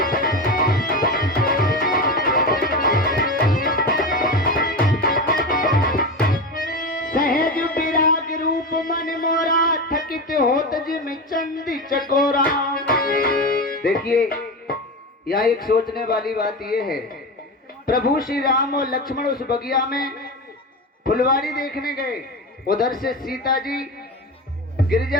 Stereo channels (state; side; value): normal; both; correlation 0.22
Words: सहज विराग रूप मन मोरा थकित होत जिम चंदी चकोरा। देखिए यहाँ एक सोचने वाली बात यह है, प्रभु श्री राम और लक्ष्मण उस बगिया में फुलवारी देखने गए, उधर से सीता जी